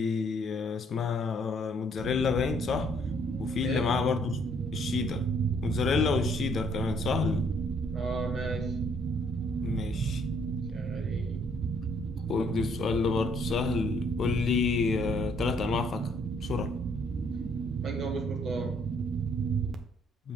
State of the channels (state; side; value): normal; both; correlation 0.66